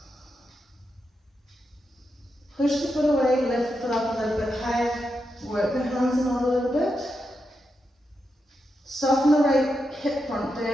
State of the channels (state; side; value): normal; both; correlation 0.86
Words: Push the foot away, lift the foot up a little bit higher. Work the hands in a little bit. Soften the right hip front